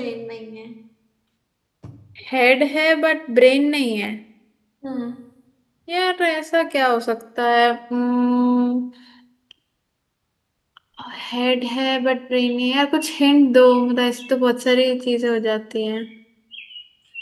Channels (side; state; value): both; identical; correlation 1.00